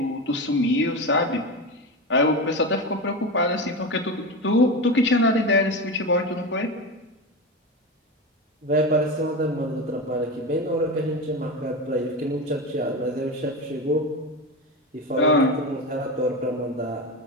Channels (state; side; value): normal; both; correlation 0.21